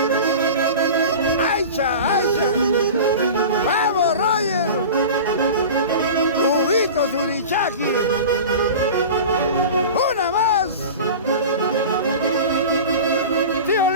¡Aicha! ¡Vamos, Roger! ¡Cubito Surichaki! ¡Una más! ¡Tío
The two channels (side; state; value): both; inverted; correlation -0.33